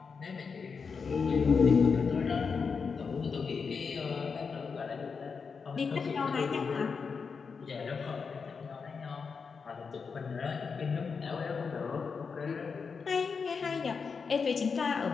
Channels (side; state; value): right; quieter; 5.4 dB